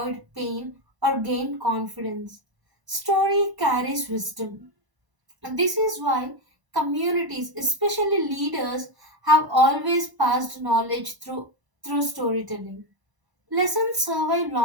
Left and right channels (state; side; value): late; left; 1.0 ms